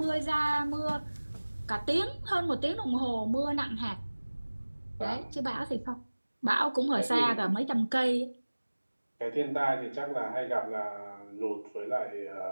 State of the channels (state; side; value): inverted; both; correlation -1.00